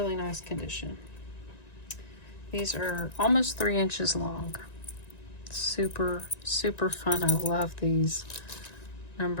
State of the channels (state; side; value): late; right; 1.9 ms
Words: nice condition. These are almost 3 inches long. Super, super fun. I love these.